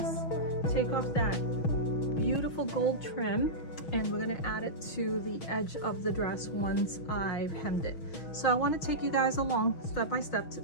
take off that beautiful gold trim, and we're going to add it to the edge of the dress once I've hemmed it. So I want to take you guys along step by step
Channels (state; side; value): late; right; 6.3 ms